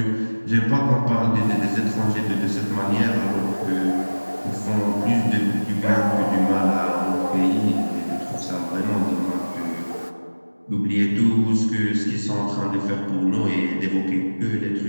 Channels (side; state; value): both; inverted; correlation -1.00